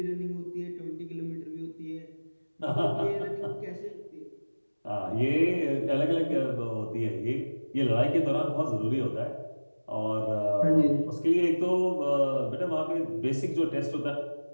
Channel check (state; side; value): inverted; both; correlation -1.00